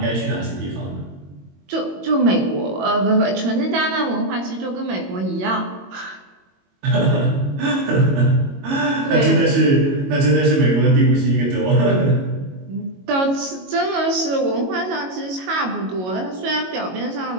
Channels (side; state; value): left; late; 22 ms